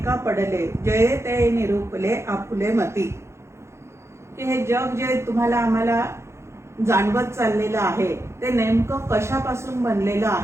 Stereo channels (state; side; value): late; left; 0.13 ms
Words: पडले जये ते निरूपले आपुले मती. की हे जग जे तुम्हाला आम्हाला जाणवत चाललेलं आहे ते नेमकं कशापासून बनलेलं